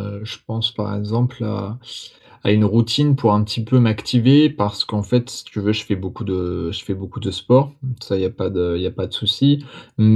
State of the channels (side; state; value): both; identical; correlation 1.00